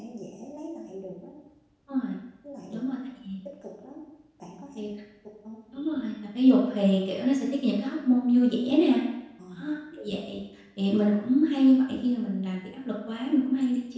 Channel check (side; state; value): both; identical; correlation 1.00